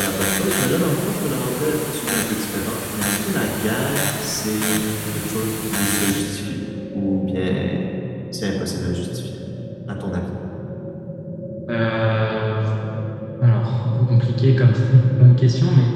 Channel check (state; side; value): identical; both; correlation 1.00